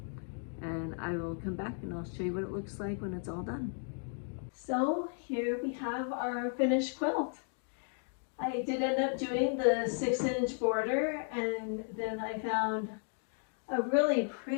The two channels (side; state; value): right; silent; 55 dB below the other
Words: And I will come back and I'll show you what it looks like when it's all done. So here we have our finished quilt. I did end up doing the 6-inch border, and then I found a really